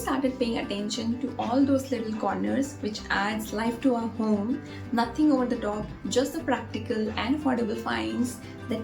paying attention to all those little corners which adds life to our home. Nothing over the top, just the practical and affordable finds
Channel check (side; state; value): both; identical; correlation 1.00